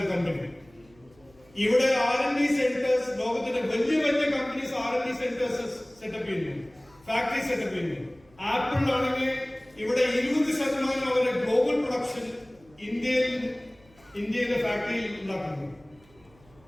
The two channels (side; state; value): right; noise; hum, 29 dB below the sound